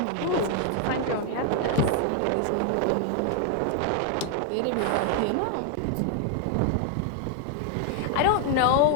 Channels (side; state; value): both; different; correlation 0.00